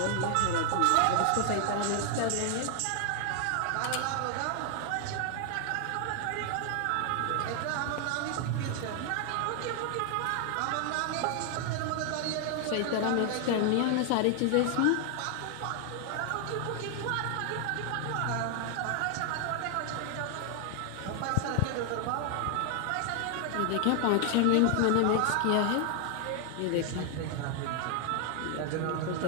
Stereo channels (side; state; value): both; different; correlation 0.00